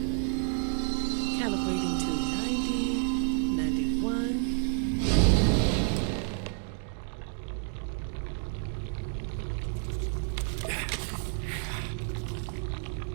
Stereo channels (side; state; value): left; silent; 55 dB below the other